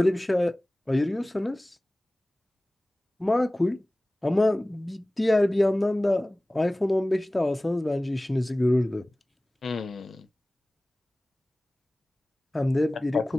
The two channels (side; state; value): both; normal; correlation 0.98